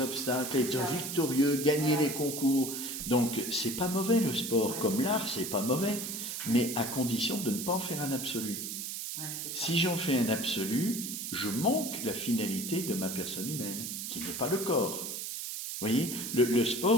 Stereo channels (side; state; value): right; noise; hiss, 5 dB below the sound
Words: être victorieux, gagner les concours. Donc, c'est pas mauvais le sport, comme l'art, c'est pas mauvais, mais à condition de ne pas en faire un absolu. Ouais, si j'en fais un absolu, je manque la finalité de ma personne humaine, qui n'est pas le corps. Vous voyez, le